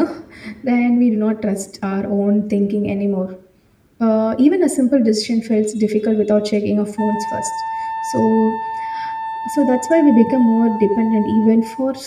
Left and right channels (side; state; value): both; identical; correlation 1.00